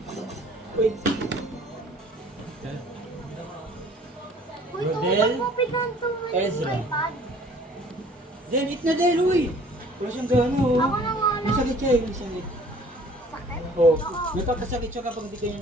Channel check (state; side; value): normal; both; correlation 0.52